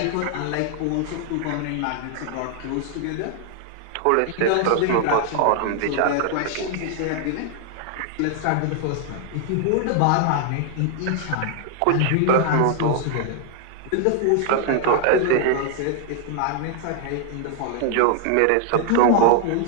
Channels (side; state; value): both; different; correlation 0.00